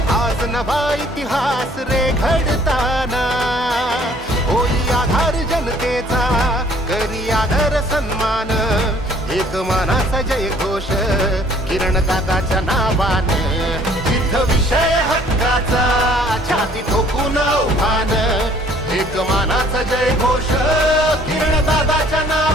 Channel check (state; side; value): normal; both; correlation 0.57